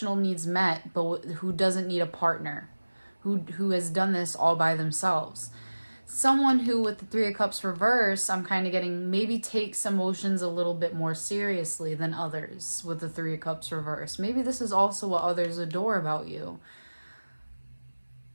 needs met, but who doesn't need a partner, who has done this all by themselves. Someone who, with the Three of Cups reverse, I'm kind of getting maybe takes emotions a little bit more seriously than others with the Three of Cups reverse. Maybe this is also what others adore about you.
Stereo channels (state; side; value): inverted; both; correlation -1.00